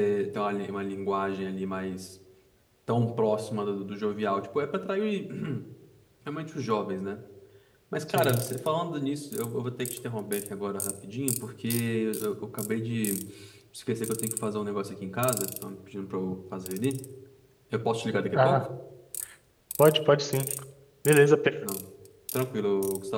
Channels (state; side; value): identical; both; correlation 1.00